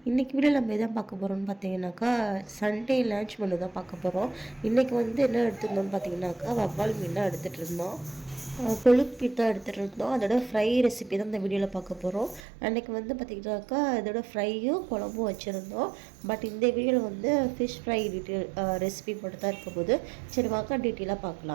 இன்றைக்கி video நம்ம எதை பார்க்க போகிறோம்னு பார்த்தீங்கன்னாக்கா சண்டே லன்ச் மெனு தான் பார்க்க போகிறோம். இன்றைக்கி வந்து என்ன எடுத்துருந்தோம்னு பார்த்தீங்கன்னாக்கா வவ்வால் மீன் தான் எடுத்துகிட்டு இருந்தோம். கொழுப்பு தான் எடுத்துகிட்டு இருந்தோம். அதோட ஃப்ரை ரெசிபி தான் இந்த வீடியோவில் பார்க்க போகிறோம். அன்றைக்கி வந்து பார்த்திங்கனாக்கா இதோட ஃப்ரையும் குழம்பும் வச்சுருந்தோம். பட் இந்த வீடியோவில் வந்து ஃபிஷ் ஃப்ரை டீட்டெயில் ரெசிபி மட்டும் தான் இருக்க போது. சரி வாங்க டீட்டெயிலாக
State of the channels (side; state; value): left; drops out; at 12.4 s